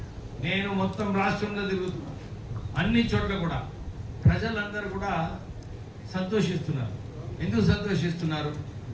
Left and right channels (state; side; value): identical; both; correlation 1.00